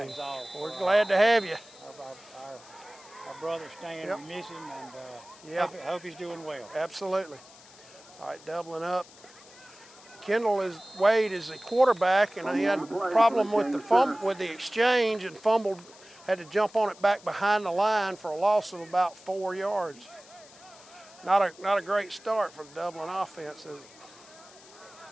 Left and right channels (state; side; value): noise; left; hiss, 22 dB below the sound